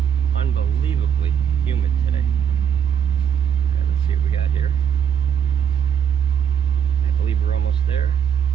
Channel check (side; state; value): left; quieter; 8.2 dB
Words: unbelievably humid today. Yeah, let's see what we got here. I believe we're almost there.